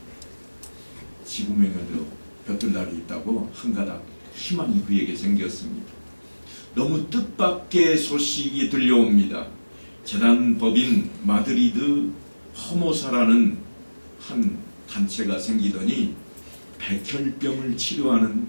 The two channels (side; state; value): both; inverted; correlation -1.00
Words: 지구명에도 볕들 날이 있다고 한 가닥 희망이 그에게 생겼습니다. 너무 뜻밖의 소식이 들려옵니다. 재단법인 마드리드 허모사라는 한 단체가 생기더니 백혈병을 치료하는